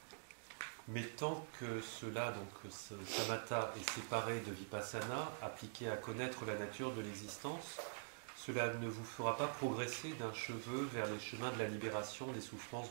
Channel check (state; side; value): silent; left; digital silence